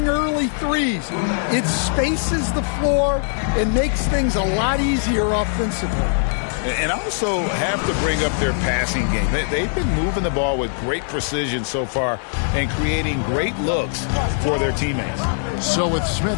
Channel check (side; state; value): right; silent; 65 dB below the other